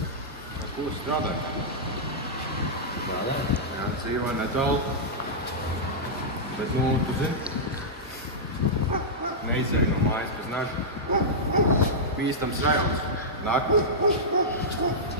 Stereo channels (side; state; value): both; normal; correlation -0.11